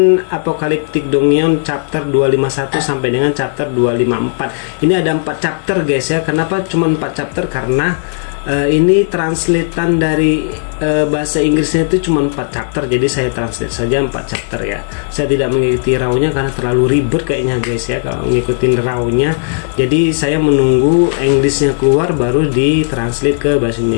Apocalyptic Dongion chapter 251 sampai dengan chapter 254. Ini ada 4 chapter guys ya. Kenapa cuma 4 chapter? Karena ini translatean dari bahasa Inggrisnya itu cuma 4 chapter. Jadi saya translate saja 4 chapter ya. Saya tidak mengikuti raw-nya karena terlalu ribet kayaknya guys ya kalau ngikutin raw-nya. Jadi saya menunggu Inggrisnya keluar baru ditranslate ke bahasa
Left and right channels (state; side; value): silent; right; digital silence